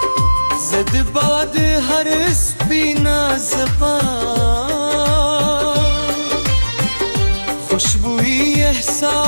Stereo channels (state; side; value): inverted; both; correlation -1.00